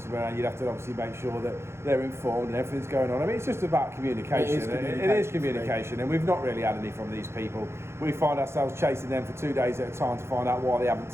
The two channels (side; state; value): left; late; 0.13 ms